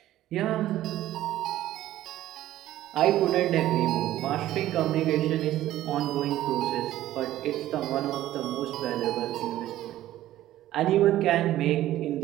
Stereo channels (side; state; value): left; quieter; 14.0 dB